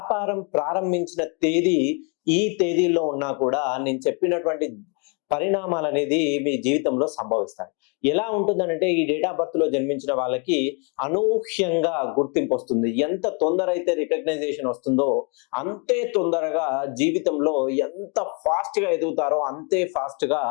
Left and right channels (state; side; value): quieter; right; 35.4 dB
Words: ప్రారంభించిన తేదీ ఈ తేదీల్లో ఉన్నా కూడా నేను చెప్పినటువంటి పరిణామాలనేది మీ జీవితంలో సంభవిస్తాయి. ఎలా ఉంటుందనంటే ఈ డేట్ ఆఫ్ బర్త్‌లో జన్మించిన వాళ్ళకి అనూహ్యంగా గుర్తింపొస్తుంది. ఎంత తొందర అయితే రికగ్నైజేషన్ వస్తుందో అంతే తొందరగా జీవితంలో ఎంత ఫాస్ట్‌గా ఎదుగుతారో అంతే ఫాస్ట్‌గా